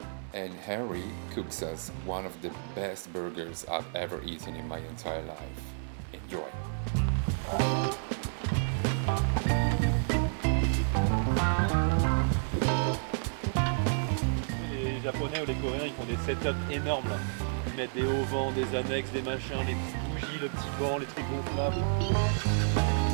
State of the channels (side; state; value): left; silent; digital silence